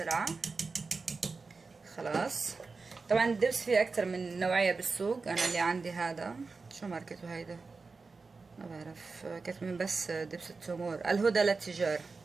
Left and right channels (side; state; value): left; quieter; 4.3 dB